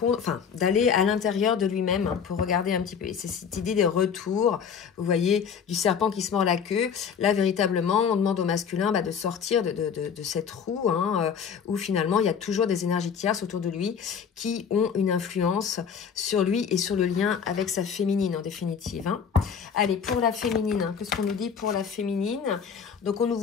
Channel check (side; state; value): right; quieter; 7.0 dB